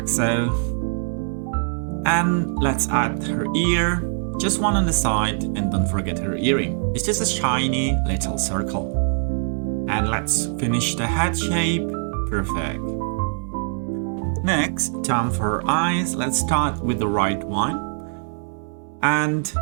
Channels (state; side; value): silent; left; 64 dB below the other